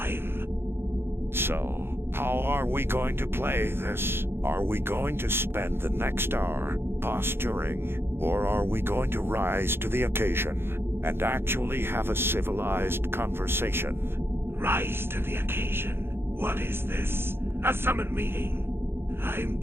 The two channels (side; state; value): left; late; 0.11 ms